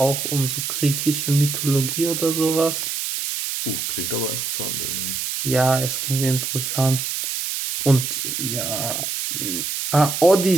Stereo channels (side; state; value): right; noise; hiss, 3 dB below the sound